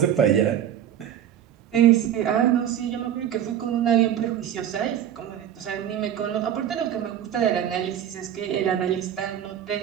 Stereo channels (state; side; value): quieter; left; 10.2 dB